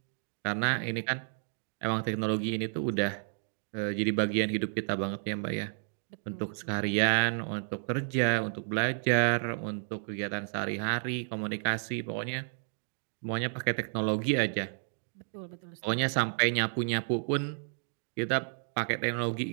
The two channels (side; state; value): left; silent; digital silence